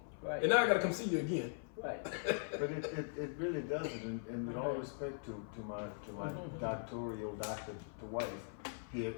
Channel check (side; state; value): right; silent; 51 dB below the other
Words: Right. and now I got to come see you again. Right. But it really doesn't, and with all respect to my doctoral doctor to wife here,